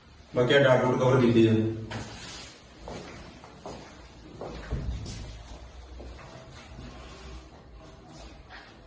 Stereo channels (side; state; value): both; identical; correlation 1.00